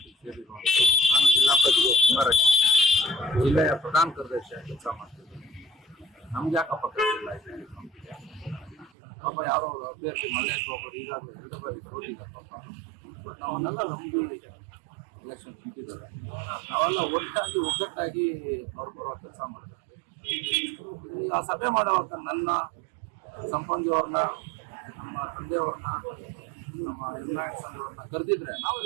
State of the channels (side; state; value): left; drops out; at 8.9 s